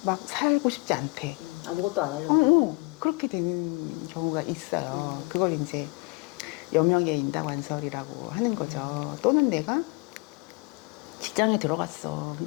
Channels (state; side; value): quieter; right; 27.8 dB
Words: 막 살고 싶지 않대? 아무것도 안 하려고. 그렇게 되는 경우가 있어요. 그걸 이제 여명의 인다관설이라고 하는 거죠. 또는 내가 직장에 들어갔어.